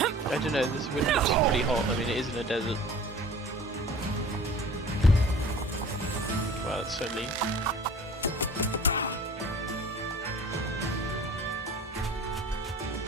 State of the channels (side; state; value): both; normal; correlation 0.45